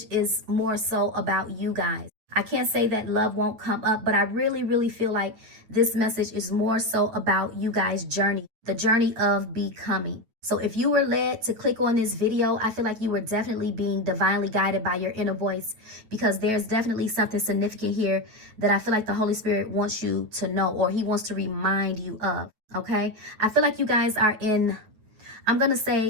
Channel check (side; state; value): left; late; 9.3 ms